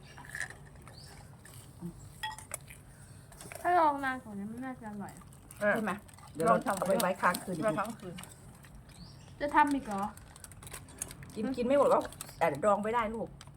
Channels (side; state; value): both; identical; correlation 1.00